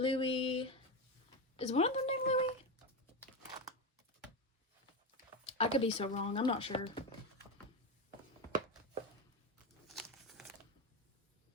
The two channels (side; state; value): both; normal; correlation 0.15